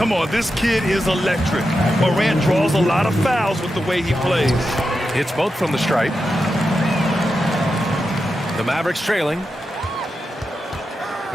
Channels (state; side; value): normal; both; correlation 0.89